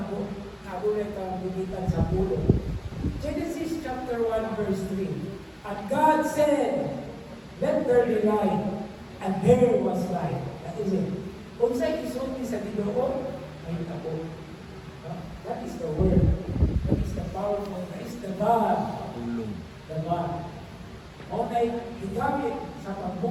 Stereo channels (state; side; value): identical; both; correlation 1.00